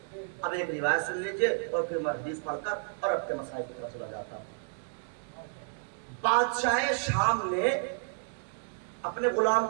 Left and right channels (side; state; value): left; silent; digital silence